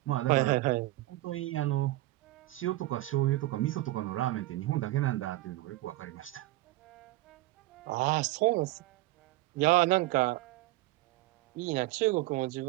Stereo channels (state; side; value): quieter; left; 17.9 dB